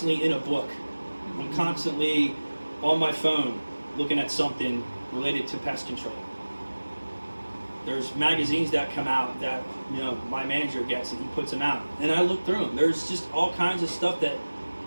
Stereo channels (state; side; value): inverted; both; correlation -1.00